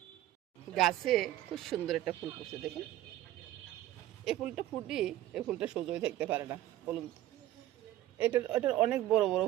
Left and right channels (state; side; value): quieter; left; 13.9 dB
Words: গাছে খুব সুন্দর একটা ফুল ফুটছে দেখুন। এই ফুলটা ফুটি, এই ফুলটা সোজই থাকতে পারে না বলুন। এটার অনেক বড় বড়